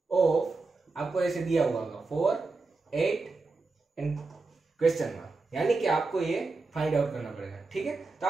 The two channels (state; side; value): quieter; left; 3.7 dB